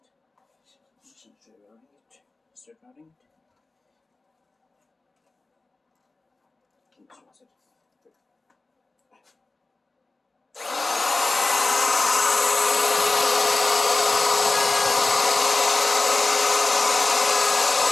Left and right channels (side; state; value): right; quieter; 3.3 dB